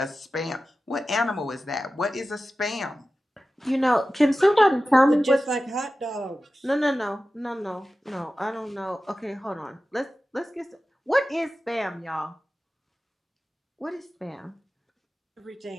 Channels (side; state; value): both; normal; correlation 0.94